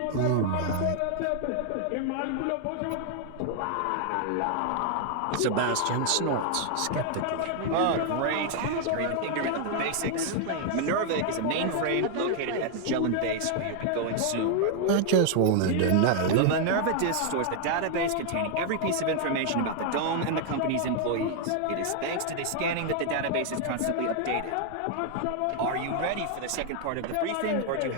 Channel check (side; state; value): both; different; correlation 0.00